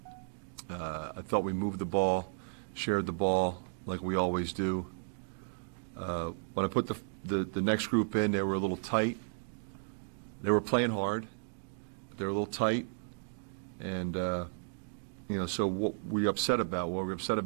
I thought we moved the ball, shared the ball like we always do. When I put the next group in, they were a little tight. They were playing hard. They were a little tight. And, so what were we upset about? Well, we were upset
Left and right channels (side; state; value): left; silent; digital silence